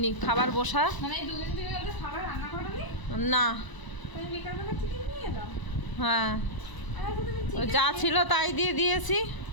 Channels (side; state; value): right; late; 1.0 ms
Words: খাবার বসা না। হ্যাঁ, যা ছিল তাই দিয়ে দিয়েছি।